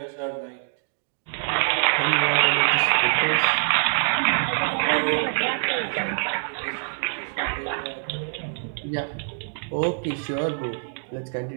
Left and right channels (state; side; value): silent; left; digital silence